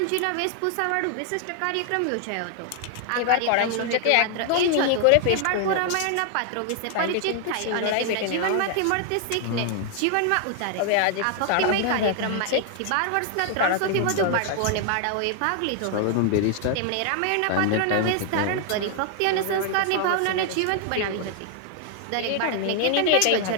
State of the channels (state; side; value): different; both; correlation 0.00